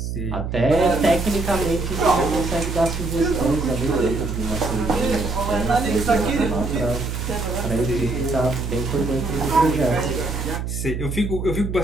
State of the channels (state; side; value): noise; right; hum, 4 dB below the sound